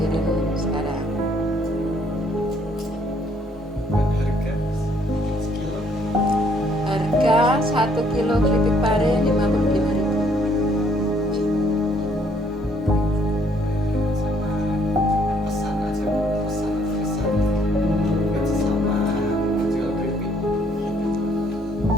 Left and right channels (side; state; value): both; normal; correlation 0.66